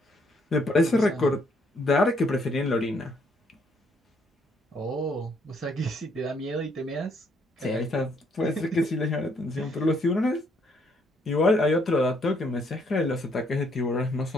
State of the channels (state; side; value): normal; both; correlation 0.70